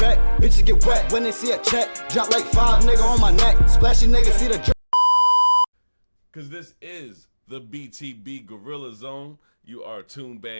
Bitches get wet when they see a check. Drop like 5 nigga on my neck. Splashy nigga see the drip. Cause this is the BTB Gorilla Zone. You are tuned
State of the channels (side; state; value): both; inverted; correlation -1.00